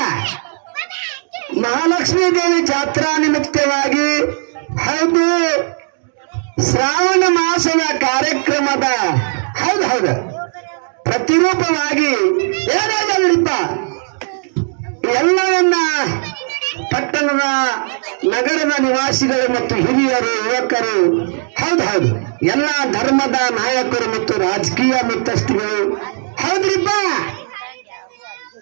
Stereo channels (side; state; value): left; silent; 57 dB below the other